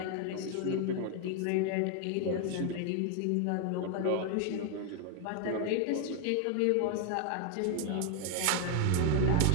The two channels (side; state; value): both; different; correlation 0.00